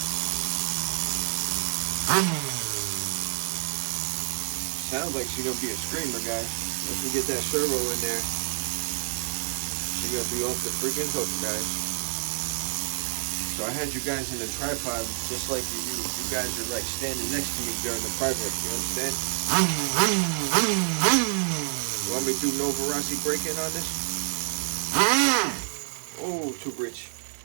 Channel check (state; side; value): silent; left; digital silence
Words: Sounds like she's gonna be a screamer, guys. Once we get that servo in there, she's gonna be off the freaking hook, guys. So I had you guys in the tripod, just like you guys are like standing next to me during the project. You understand? You want me to do Novarasi break-in on this? Oh, too rich.